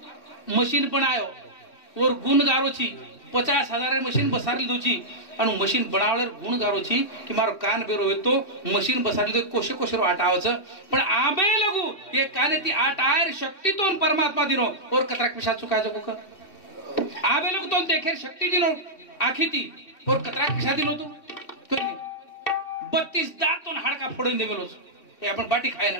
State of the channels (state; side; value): late; right; 2.7 ms